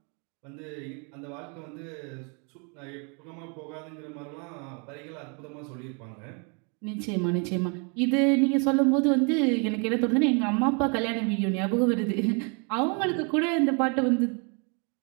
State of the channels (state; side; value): quieter; left; 35.8 dB